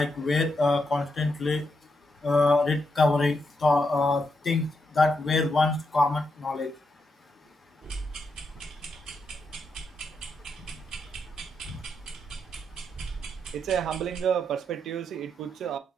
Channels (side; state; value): both; normal; correlation 0.82